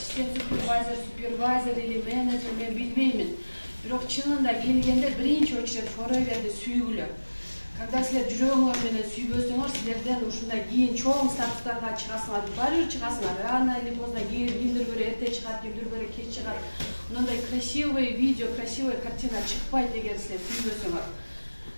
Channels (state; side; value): inverted; both; correlation -1.00